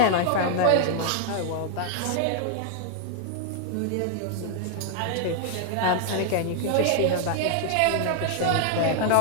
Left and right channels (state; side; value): different; both; correlation 0.00